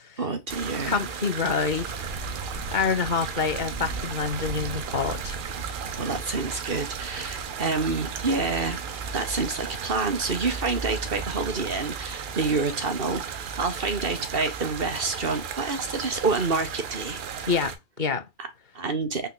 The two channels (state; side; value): late; left; 2.4 ms